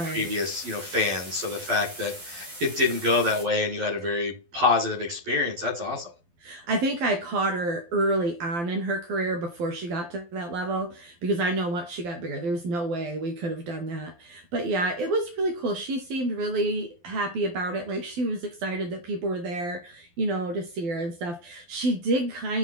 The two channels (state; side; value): late; left; 12 ms